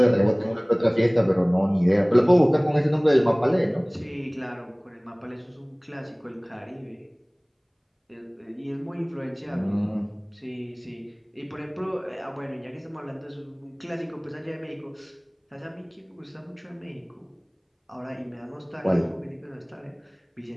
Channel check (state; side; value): identical; both; correlation 1.00